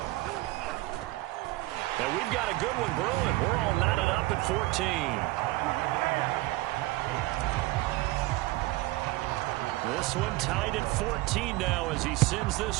And we've got a good one brewing. We're all knotted up at 14. This one tied at 14 now as he sends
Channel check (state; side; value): quieter; left; 19.6 dB